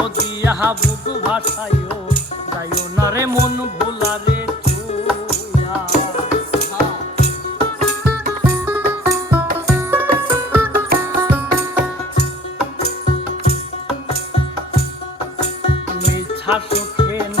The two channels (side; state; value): both; normal; correlation 0.51